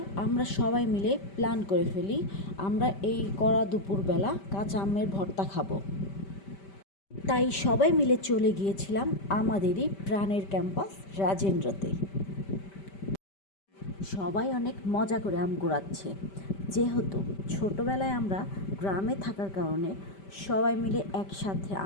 আমরা সবাই মিলে প্ল্যান করে ফেলি আমরা এই কড়া দুপুরবেলা কাঁচা আমের ভর্তা খাবো। তাই সবাই মিলে চলে গিয়েছিলাম আমাদেরই প্রাণের ক্যাম্পাস রাজেন্দ্রতে। সবাই অনেক মজা করে আম কুড়াচ্ছে। যেহেতু ছোটোবেলায় আমরা গ্রামে থাকার কারণে সবাই মিলে একসাথে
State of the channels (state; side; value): late; right; 5.1 ms